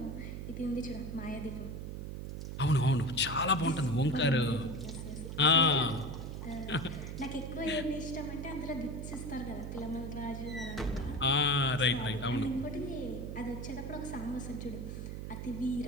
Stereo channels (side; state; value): right; noise; hum, 6 dB below the sound